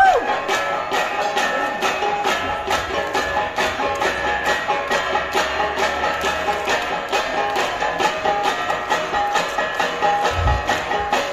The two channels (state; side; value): identical; both; correlation 1.00